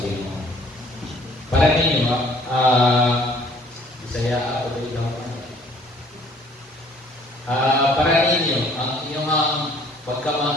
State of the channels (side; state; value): both; normal; correlation 0.57